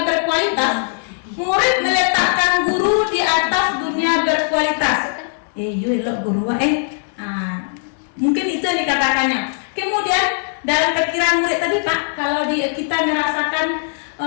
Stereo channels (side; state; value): right; silent; digital silence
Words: berkualitas, murid meletakkan guru di atas dunia berkualitas. Mungkin itu yang dikatakannya. Kemudian dalam pikiran murid tadi Pak, kalau kita merasakan